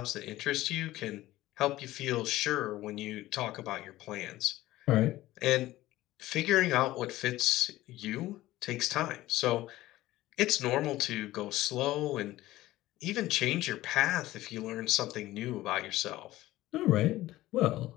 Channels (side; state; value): right; quieter; 16.4 dB